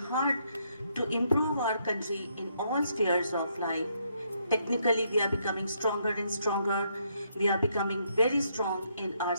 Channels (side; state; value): both; inverted; correlation -0.74